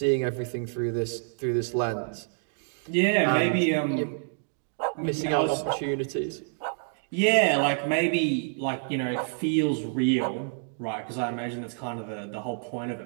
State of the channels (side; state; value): left; silent; digital silence